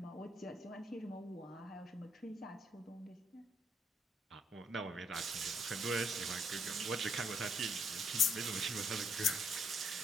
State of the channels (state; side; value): normal; both; correlation 0.72